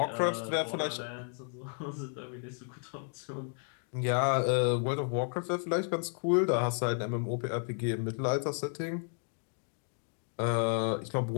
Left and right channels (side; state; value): right; silent; 56 dB below the other